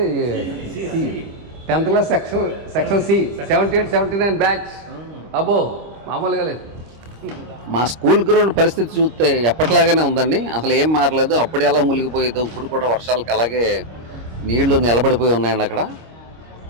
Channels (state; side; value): late; left; 26 ms